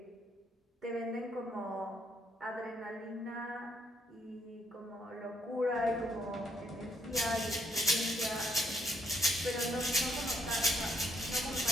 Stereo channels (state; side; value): normal; both; correlation 0.72